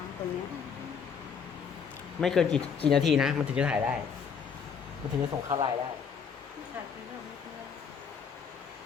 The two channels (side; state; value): right; quieter; 6.6 dB